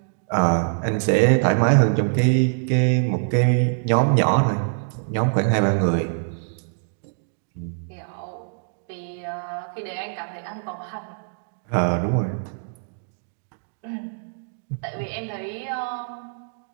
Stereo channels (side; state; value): left; silent; digital silence